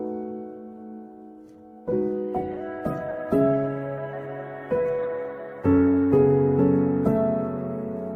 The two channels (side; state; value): both; identical; correlation 1.00